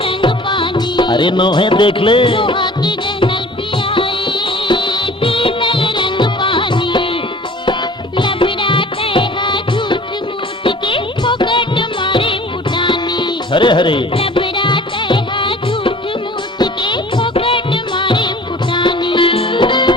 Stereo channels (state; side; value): normal; both; correlation 0.47